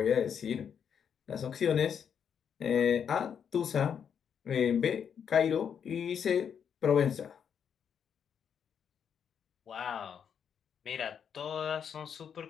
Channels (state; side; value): quieter; right; 7.7 dB